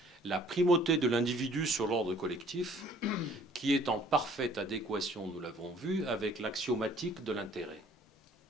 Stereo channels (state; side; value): normal; both; correlation 0.57